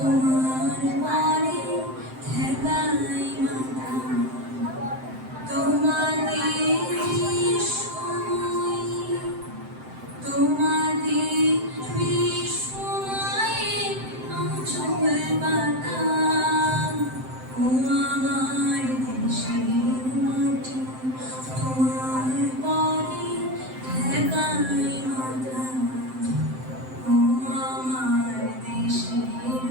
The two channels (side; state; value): left; late; 7.7 ms